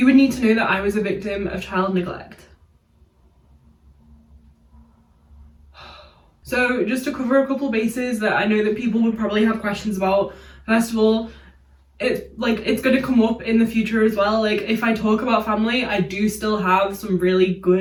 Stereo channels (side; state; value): both; identical; correlation 1.00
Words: would need to know that I was a victim of child neglect. So just to cover a couple bases that I know that people would probably have questions about. First of all, it's going to come up in the future as well. Like if I talk about family, I do still have some really